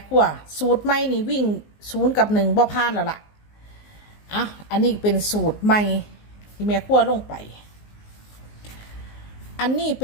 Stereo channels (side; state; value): right; late; 19 ms